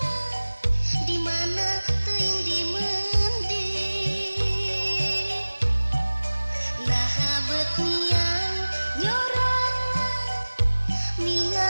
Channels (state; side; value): inverted; both; correlation -1.00